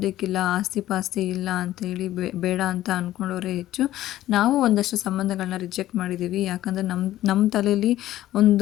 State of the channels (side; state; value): right; quieter; 14.2 dB